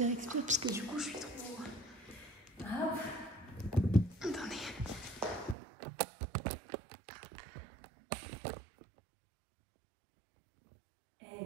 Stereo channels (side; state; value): left; drops out; at 5.6 s